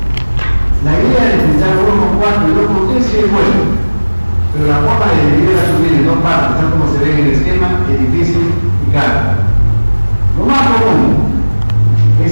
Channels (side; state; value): both; inverted; correlation -1.00